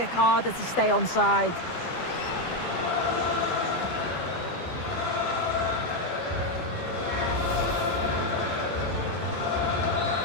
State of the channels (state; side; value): late; right; 12 ms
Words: harder to stay onside.